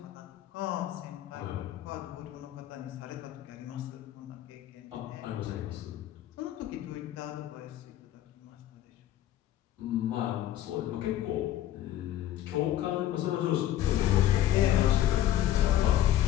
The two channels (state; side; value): quieter; right; 12.8 dB